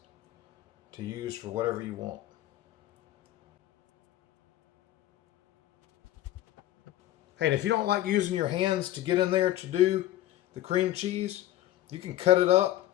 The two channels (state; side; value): quieter; right; 14.2 dB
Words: to use for whatever you want. Hey, and if you don't like using your hands to get in there to do the cream cheese, you can cut it up.